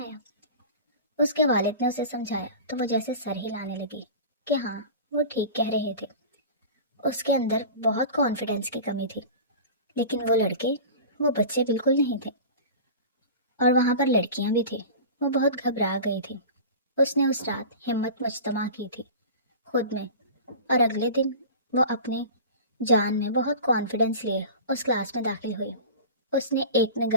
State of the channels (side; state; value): both; inverted; correlation -0.34